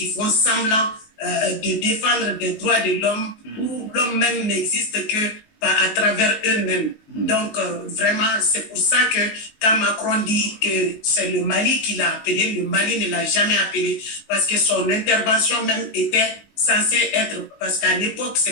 font semblant de défendre des droits de l'homme, où l'homme même n'existe que à travers eux-mêmes. Donc, vraiment, c'est pour ça que quand Macron dit que c'est le Mali qui l'a appelé, le Mali ne l'a jamais appelé, parce que son intervention même était censée être, parce qu'à l'époque,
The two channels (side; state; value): right; late; 19 ms